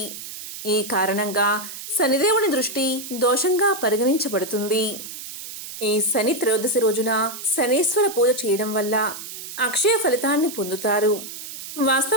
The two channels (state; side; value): noise; right; hiss, 11 dB below the sound